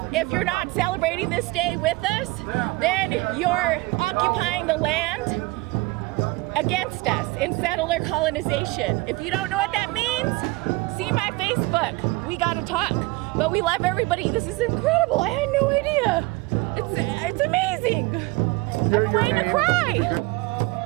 if you're not celebrating this day with us, then you're occupying the land against us in settler colonization. If you don't know what that means, see my Facebook. We gotta talk. But we love everybody. This is incredible. I had no idea. It's amazing. I'm waiting to cry.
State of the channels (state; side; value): quieter; left; 22.3 dB